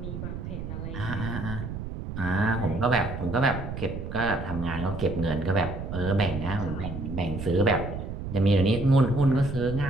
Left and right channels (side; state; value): right; noise; rumble, 7 dB below the sound